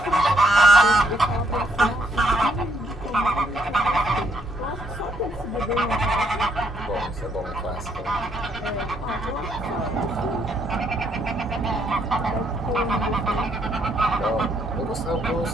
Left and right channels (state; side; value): normal; both; correlation 0.71